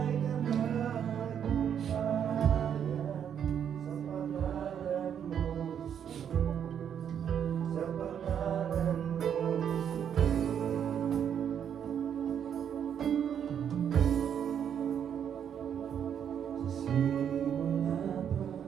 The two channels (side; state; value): left; quieter; 8.6 dB